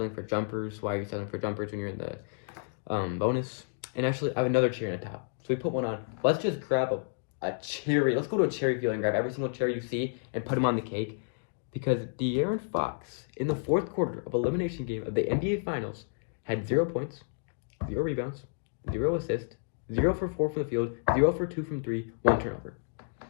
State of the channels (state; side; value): silent; right; digital silence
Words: for jumpers. Why are you settling for jumpers when you're in the bonus? And actually, I have another cherry on top. So we put one on. Let's just grab a cherry. Let's go to a cherry field and grab every single cherry you see and put them on the cake. Because De'Aaron Fox, in the fourth quarter of elimination game of the NBA Finals, had 0 points, 0 rebounds, 0 assists, 0 for 4 from the field, 0 for 2 from 3, 1 turnover.